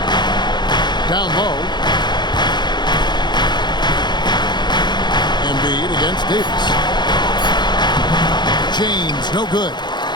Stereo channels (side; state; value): right; late; 0.21 ms